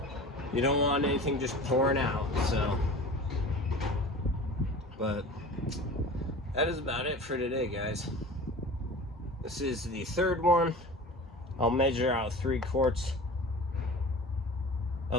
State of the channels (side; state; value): both; normal; correlation 0.37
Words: you don't want anything just pouring out, so. But that is about it for today, guys. This is the third one. I'll measure out 3 quarts